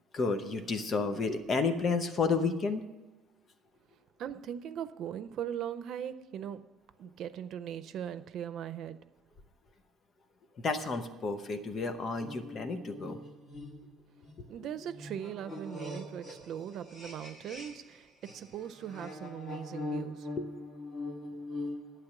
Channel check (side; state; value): both; normal; correlation 0.57